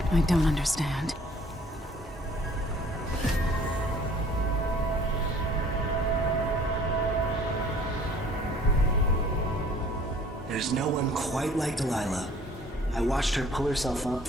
I don't understand. There's no one quite like Delilah. I watched her pull herself up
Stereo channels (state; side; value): normal; both; correlation 0.53